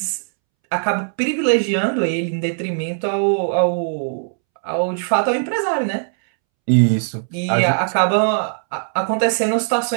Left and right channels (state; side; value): silent; left; 66 dB below the other